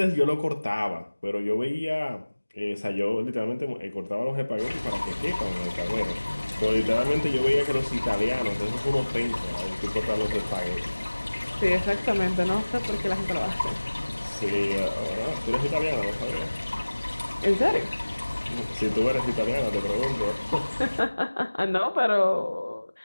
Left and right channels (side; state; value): both; inverted; correlation -1.00